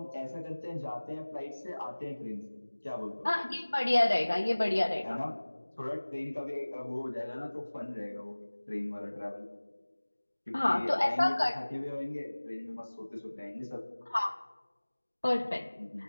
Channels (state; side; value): inverted; both; correlation -1.00